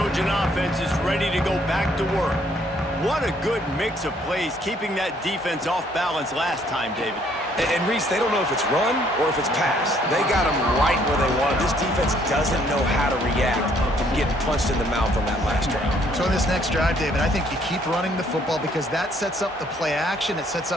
Trojan offense is ready to go back to work. What a good mix of plays keeping that defense off balance last time, David. And Reese, they don't know if it's run or if it's pass. They got them right where they want. This defense doesn't know how to react from getting punched in the mouth on that last drive. So in this next drive, David, I think you keep running the football because that sets up the play action, it sets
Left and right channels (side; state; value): both; normal; correlation 0.65